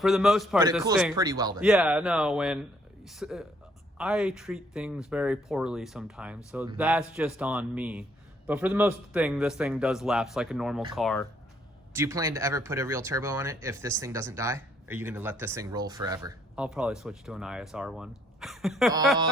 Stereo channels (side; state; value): both; normal; correlation 0.67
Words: the most part, but it cools pretty well then. Yeah, no, when I treat things very poorly sometimes, so that's just on me. But for the most thing, this thing does lapse like a normal car. Do you plan to ever put a real turbo on it if this thing doesn't die? Or are you going to let this thing roll forever? I'll probably switch to an ISR one.